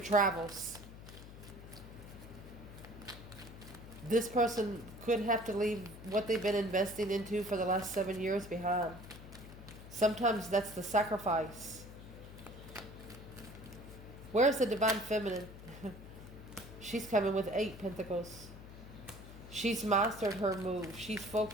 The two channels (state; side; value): noise; left; hum, 15 dB below the sound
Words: This person could have to leave what they've been investing into for the last 7 years behind. Sometimes that's the sacrifice. Where's the divine feminine? She's coming with 8 pentacles. She's mastered her move. She's